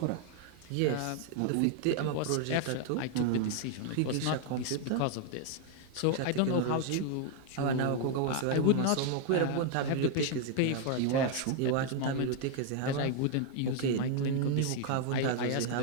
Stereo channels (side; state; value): both; different; correlation 0.00